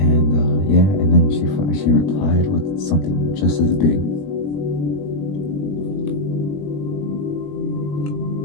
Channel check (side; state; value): right; late; 20 ms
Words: and then she replied with something just as big.